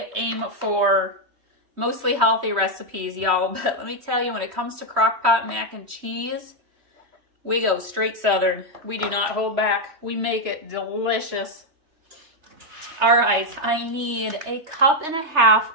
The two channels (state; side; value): late; left; 3.1 ms